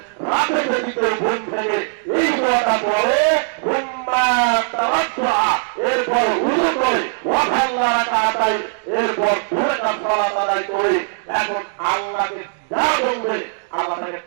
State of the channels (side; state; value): left; silent; digital silence